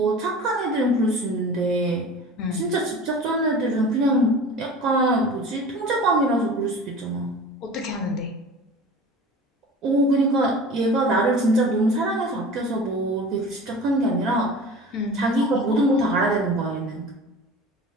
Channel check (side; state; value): both; normal; correlation 0.39